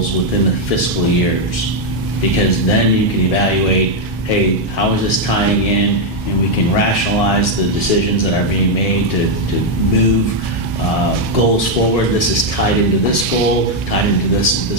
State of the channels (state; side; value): normal; both; correlation 0.01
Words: within the fiscal years, because then you can evaluate, hey, how is this tying in, and we can rationalize the decisions that are being made to move goals forward. This is tied into this goal, tied into